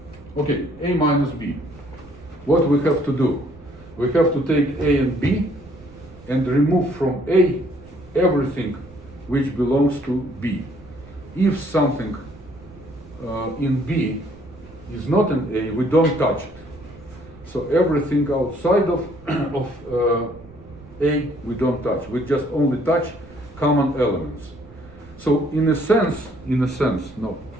Okay, A minus B. What we have to do? We have to take A and B and remove from A everything which belongs to B. If something in B is not in A, we don't touch it. So everything outside of A we don't touch. We just only touch common elements. So in this sense,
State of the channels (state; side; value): noise; right; rumble, 21 dB below the sound